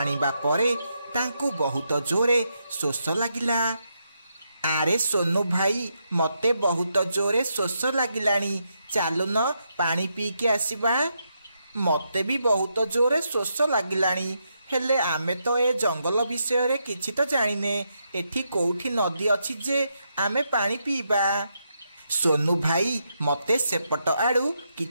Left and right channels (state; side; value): inverted; both; correlation -0.81